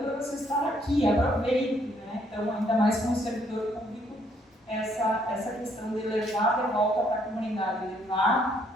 para você estar aqui, aproveite, né? Então, ainda mais como servidor público, essa questão de levar de volta para a comunidade,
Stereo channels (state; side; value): normal; both; correlation 0.68